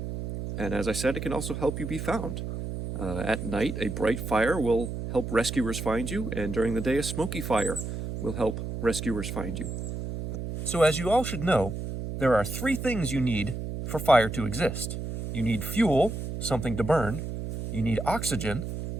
And as I said, it can also help you be found. At night, a bright fire will help rescuers find you, and during the day, a smoky fire will help rescuers find you. So as you all should know, there are 3 things you need for fire to exist. You need fuel, something to burn, you need oxygen,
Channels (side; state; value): right; noise; hum, 5 dB below the sound